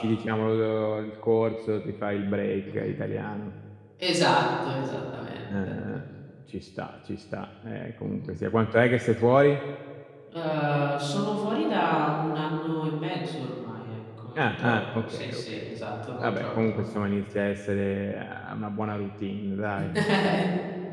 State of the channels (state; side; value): identical; both; correlation 1.00